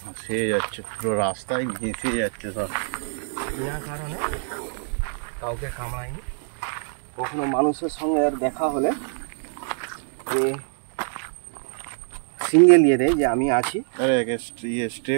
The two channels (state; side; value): silent; left; digital silence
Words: ভাসিয়ে যাচ্ছে, পুরো রাস্তায় ভেসে যাচ্ছে সব। বিনা কারণে কাউকে কামড়ায়নি। কখনো মানুষের সঙ্গে আর দেখা হলে এ সিঙ্গেল ইয়ে দেয় যে আমি আছি। আরে একে স্টে